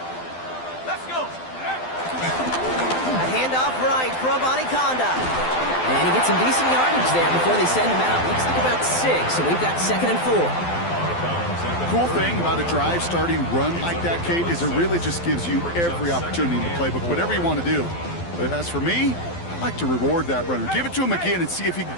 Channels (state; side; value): late; right; 12 ms